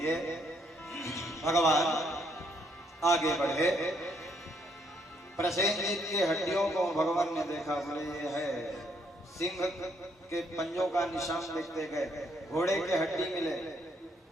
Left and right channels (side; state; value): both; normal; correlation 0.71